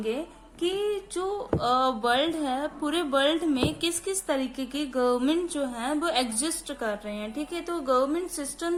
कि जो world है, पूरे वर्ल्ड में किस किस तरीके की गवर्नमेंट जो है वो एग्जिस्ट कर रहे हैं. ठीक है, तो गवर्नमेंट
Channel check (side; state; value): both; identical; correlation 1.00